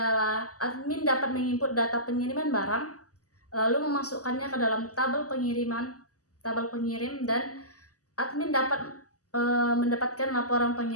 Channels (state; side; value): late; right; 0.67 ms